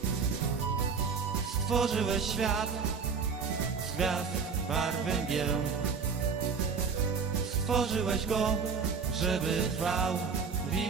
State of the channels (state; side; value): quieter; left; 5.6 dB